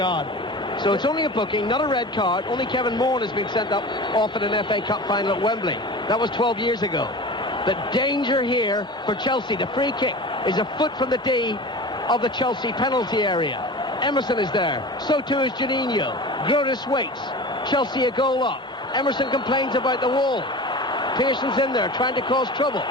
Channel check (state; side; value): normal; both; correlation 0.34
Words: So it's only a booking, not a red card. Only Kevin Moran has been sent off in an FA Cup final at Wembley. That was 12 years ago. The danger here for Chelsea, the free kick, is a foot from the D of the Chelsea penalty area. Emerson is there. So too is Juninho. Grotus waits. Chelsea a goal up. Emerson complains about the wall. Pearson's in there trying to cause trouble.